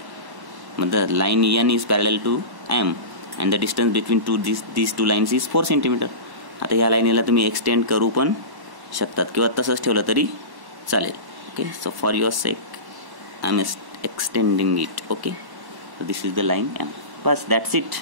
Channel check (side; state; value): left; late; 1.1 ms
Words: मतलब line N is parallel to M and the distance between these two lines is 4 centimetre. आता या लाईनीला तुम्ही एक्सटेंड करू पण शकतात किंवा तसंच ठेवलं तरी चालेल. Okay. So for your sake I am extending it. Okay. So this is the line M. बस, दॅट्स इट.